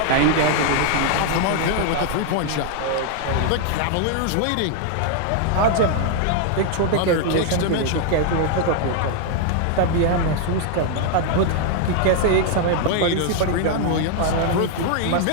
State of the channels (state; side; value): different; both; correlation 0.00